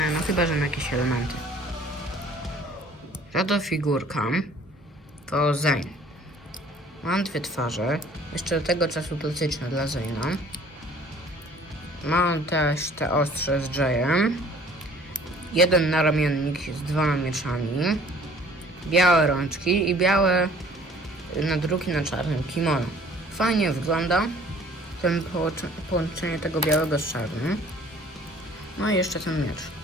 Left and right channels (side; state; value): both; normal; correlation 0.53